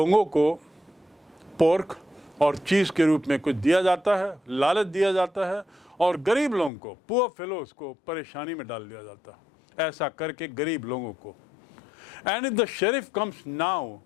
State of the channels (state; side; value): drops out; right; at 6.7 s